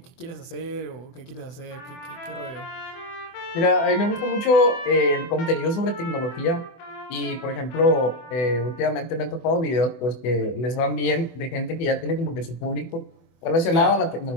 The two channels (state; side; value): late; right; 24 ms